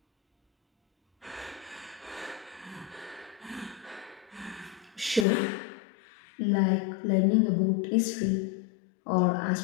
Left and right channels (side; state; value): right; drops out; at 5.2 s